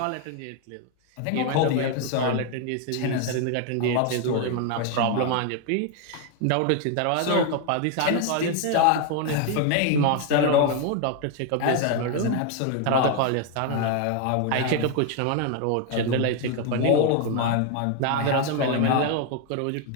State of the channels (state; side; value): different; both; correlation 0.01